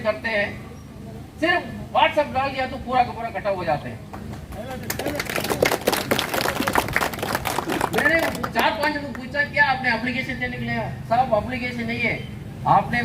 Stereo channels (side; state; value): both; identical; correlation 1.00